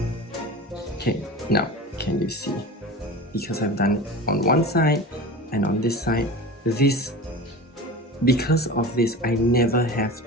Okay, now can you see? Because I've done it on one side and on this side, because of this, I never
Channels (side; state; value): both; normal; correlation 0.32